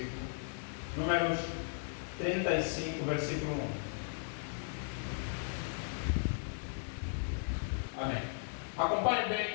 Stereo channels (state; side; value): silent; right; digital silence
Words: Números 35, versículo 1. Amém. Acompanhe